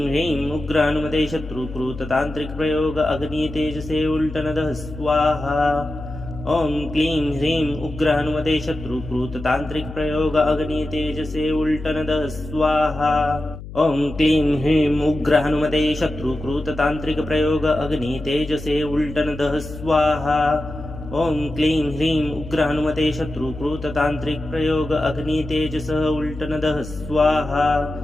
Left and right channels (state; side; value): noise; left; hum, 12 dB below the sound